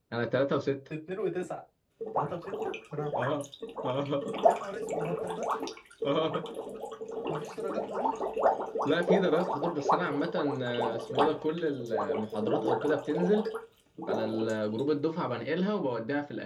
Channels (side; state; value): both; identical; correlation 1.00